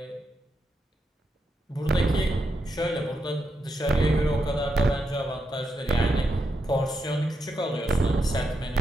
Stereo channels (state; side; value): normal; both; correlation 0.84